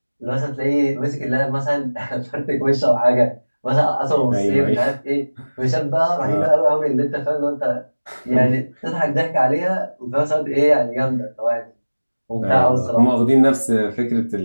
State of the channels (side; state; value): both; inverted; correlation -1.00